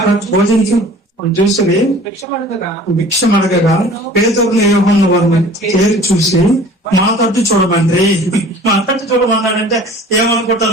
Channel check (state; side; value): normal; both; correlation 0.46